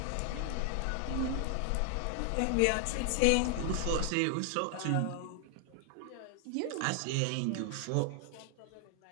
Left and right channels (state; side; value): different; both; correlation 0.00